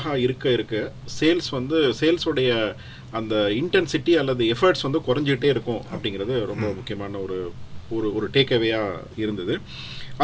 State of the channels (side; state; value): both; identical; correlation 1.00